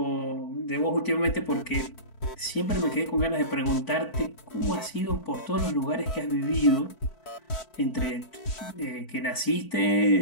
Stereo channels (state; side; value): late; right; 4.5 ms